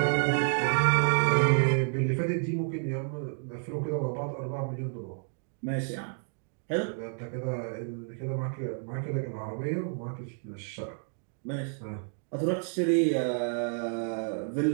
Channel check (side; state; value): left; silent; 58 dB below the other